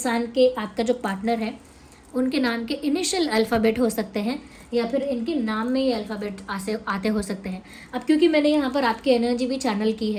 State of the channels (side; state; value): both; identical; correlation 1.00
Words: के, आपका जो पार्टनर है, उनके नाम के इनिशियल अल्फ़ाबेट हो सकते हैं, या फिर इनके नाम में ये अल्फ़ाबेट आते हो सकते हैं। अब क्योंकि मैंने यहाँ पर आपकी एनर्जी भी चैनल की